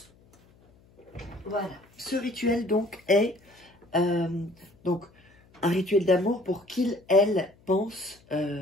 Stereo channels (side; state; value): left; noise; hum, 30 dB below the sound